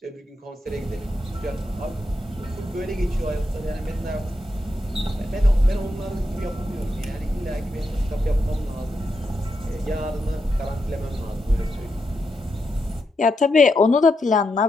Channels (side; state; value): both; normal; correlation 0.84